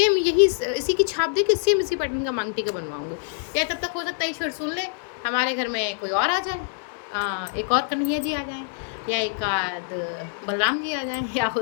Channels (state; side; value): silent; right; digital silence